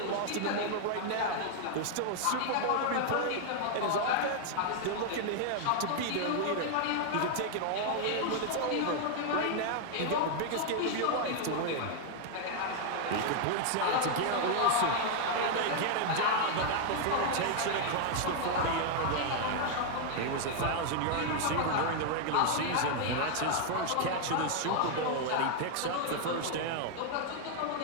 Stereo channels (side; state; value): both; different; correlation 0.00